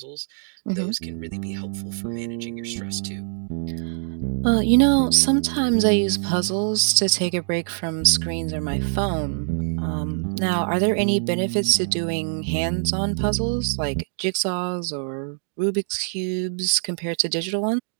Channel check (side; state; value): left; silent; digital silence